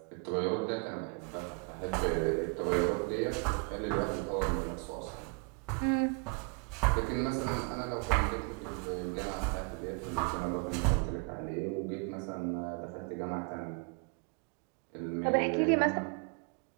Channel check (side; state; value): left; quieter; 33.3 dB